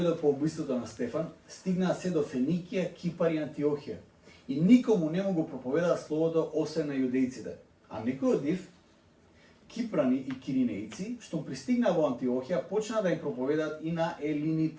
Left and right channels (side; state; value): both; identical; correlation 1.00